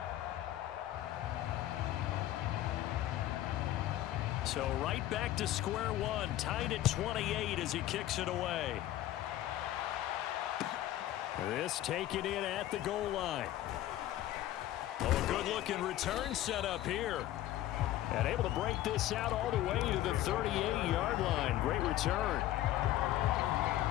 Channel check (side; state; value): right; quieter; 13.9 dB